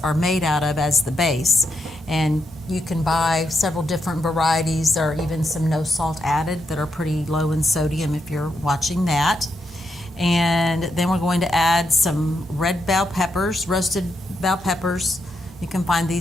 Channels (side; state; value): both; normal; correlation 0.82